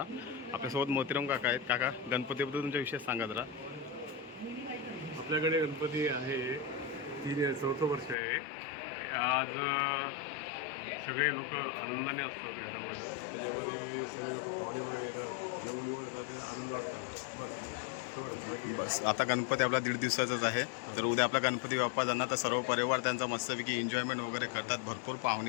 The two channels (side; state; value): right; drops out; at 8.2 s